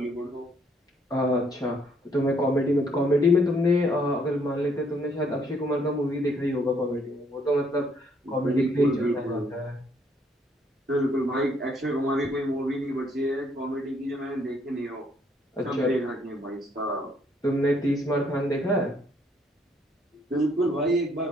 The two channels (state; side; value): normal; both; correlation 0.68